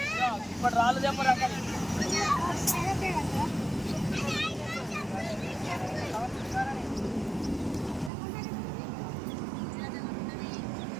ఇప్పుడు రాళ్ళు చెప్పరా.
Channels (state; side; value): drops out; left; at 8.1 s